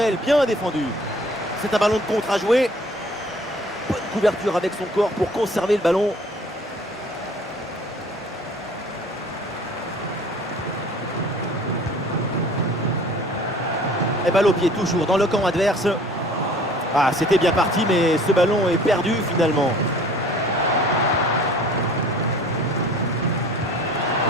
bien défendu. C'est un ballon de contre à jouer. Bonne couverture avec son corps pour conserver le ballon. Et balle au pied toujours dans le camp adverse. Ah, c'était bien parti, mais ce ballon est perdu finalement.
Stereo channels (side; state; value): both; normal; correlation 0.50